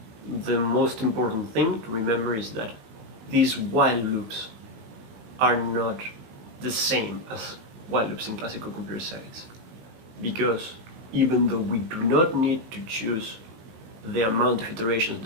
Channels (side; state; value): left; late; 18 ms